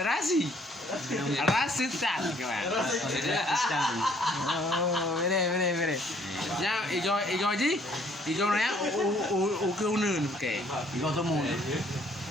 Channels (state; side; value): normal; both; correlation 0.62